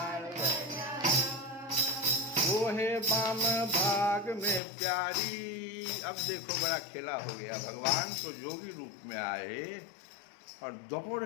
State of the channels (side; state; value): right; drops out; at 4.6 s